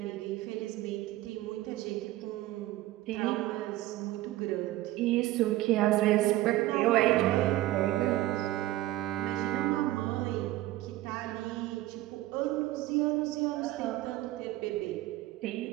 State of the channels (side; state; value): left; quieter; 16.2 dB